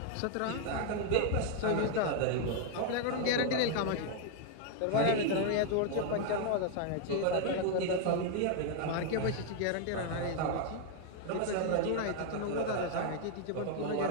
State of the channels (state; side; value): different; both; correlation 0.00